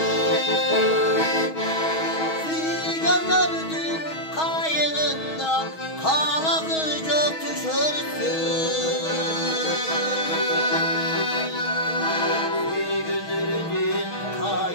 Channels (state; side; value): late; right; 6.3 ms